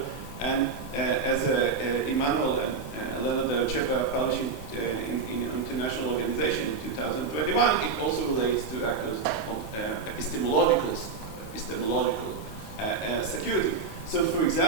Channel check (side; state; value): left; quieter; 4.7 dB